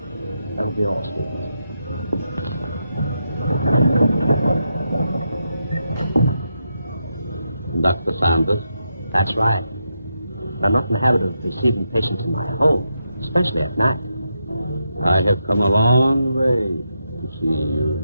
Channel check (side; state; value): both; inverted; correlation -0.84